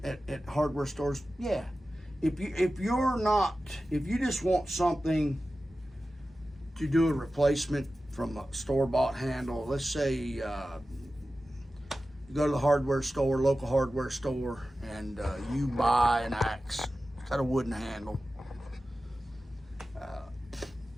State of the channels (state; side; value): normal; both; correlation 0.94